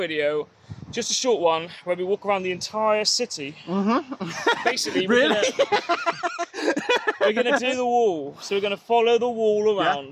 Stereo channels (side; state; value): both; identical; correlation 1.00